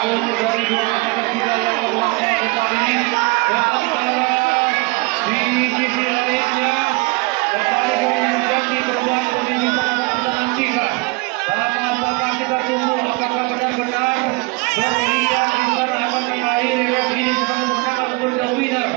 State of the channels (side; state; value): left; quieter; 26.3 dB